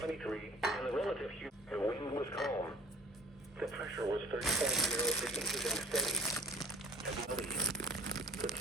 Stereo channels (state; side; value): normal; both; correlation 0.50